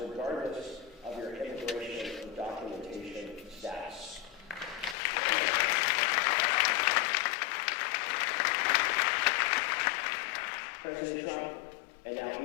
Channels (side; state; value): right; drops out; at 5.0 s